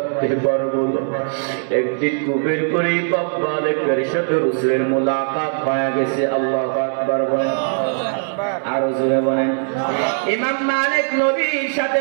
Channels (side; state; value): left; silent; digital silence